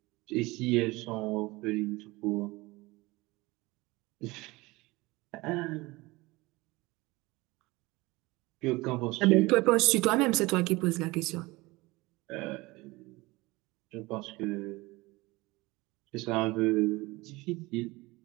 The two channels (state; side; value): quieter; left; 21.9 dB